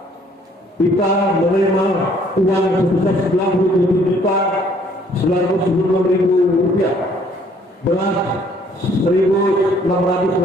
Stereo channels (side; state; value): both; normal; correlation 0.61